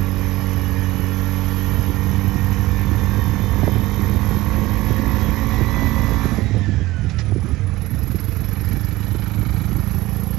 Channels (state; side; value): quieter; left; 18.3 dB